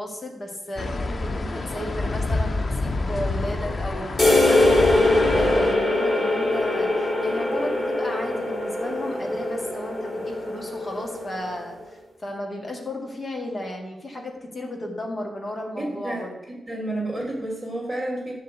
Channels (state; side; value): normal; both; correlation 0.89